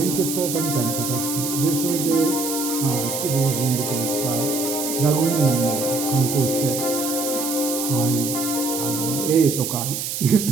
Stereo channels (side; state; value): right; noise; hiss, 4 dB below the sound